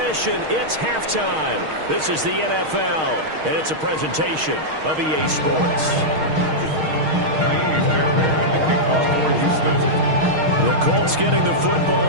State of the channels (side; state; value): left; late; 6.4 ms